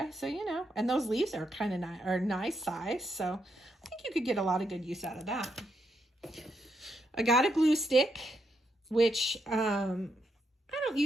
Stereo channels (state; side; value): normal; both; correlation 0.80